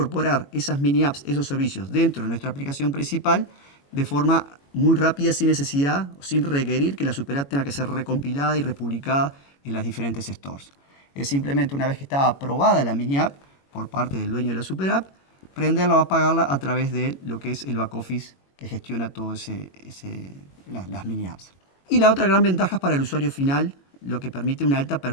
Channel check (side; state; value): right; late; 21 ms